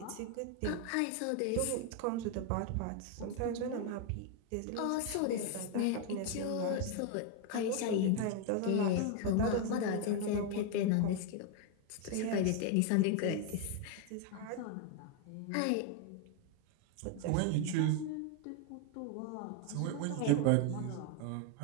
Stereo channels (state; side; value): different; both; correlation 0.01